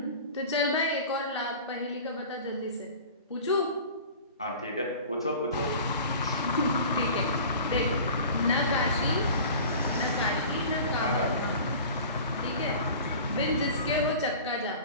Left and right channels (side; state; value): both; inverted; correlation -0.40